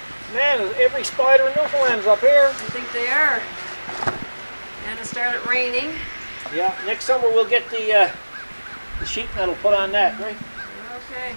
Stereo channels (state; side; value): inverted; both; correlation -1.00